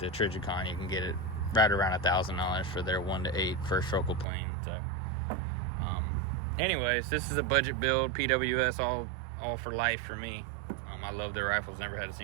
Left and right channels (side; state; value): left; drops out; at 4.2 s